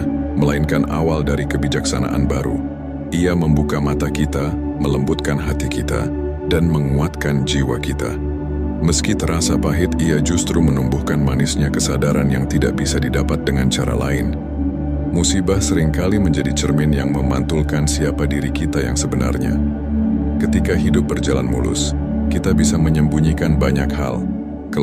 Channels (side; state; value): both; identical; correlation 1.00